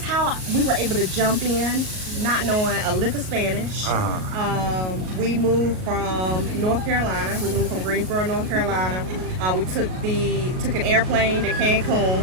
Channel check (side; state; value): left; late; 38 ms